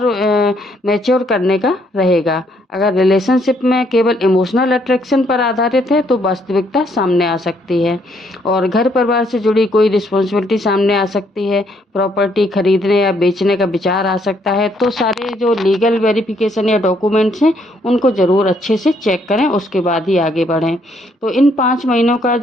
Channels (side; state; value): both; normal; correlation 0.70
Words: मैच्योर करने का रहेगा। अगर रिलेशनशिप में केवल इमोशनल अट्रैक्शन पर आधारित है तो वास्तविकता सामने आ सकती है। और घर परिवार से जुड़ी कोई रिस्पॉन्सिबिलिटी सामने आ सकती है। प्रॉपर्टी खरीदने या बेचने का विचार आ सकता है। तो सारे जो लीगल वेरिफिकेशन या डॉक्यूमेंट्स हैं उनको ज़रूर अच्छे से चेक करें, उसके बाद ही आगे बढ़ें। तो इन 5 महीनों का